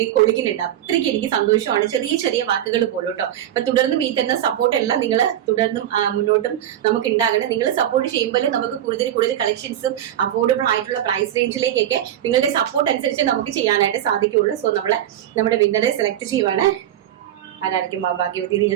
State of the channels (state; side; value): quieter; left; 11.5 dB